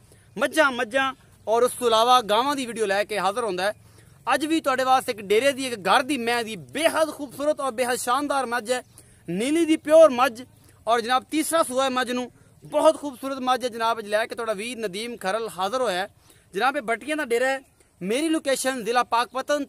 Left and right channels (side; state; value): both; identical; correlation 1.00